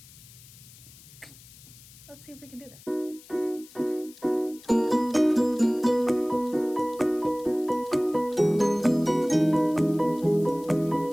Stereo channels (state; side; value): noise; left; hiss, 22 dB below the sound